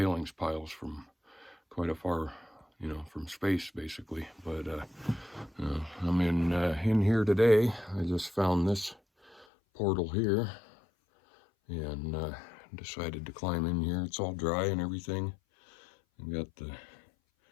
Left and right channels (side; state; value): right; drops out; at 9.5 s